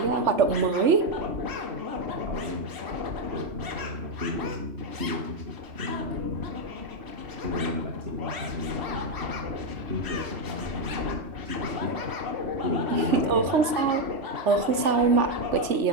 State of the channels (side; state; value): left; late; 3.4 ms